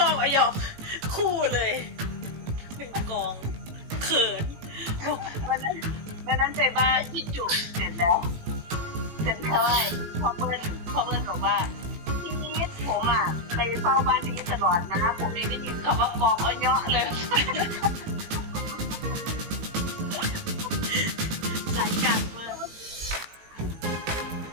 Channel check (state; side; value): late; left; 18 ms